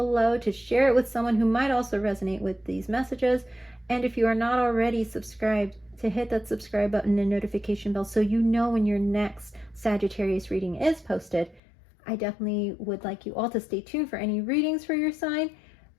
to share it with someone who might also resonate with these messages. And if you are not already subscribed, to hit that subscribe button and notification bell so you know when your next Sagittarius reading is posted. I definitely would like you all to stay tuned for any readings for your sign,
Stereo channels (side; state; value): right; drops out; at 11.6 s